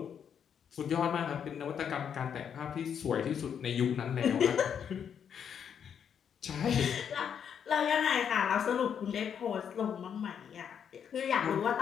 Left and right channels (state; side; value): quieter; right; 8.0 dB